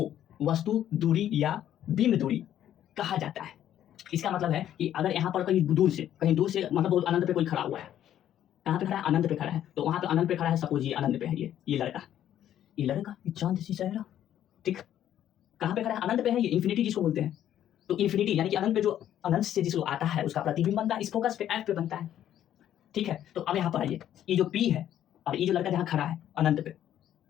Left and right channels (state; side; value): quieter; right; 11.2 dB